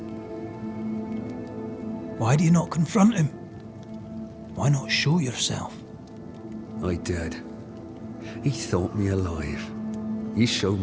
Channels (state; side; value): identical; both; correlation 1.00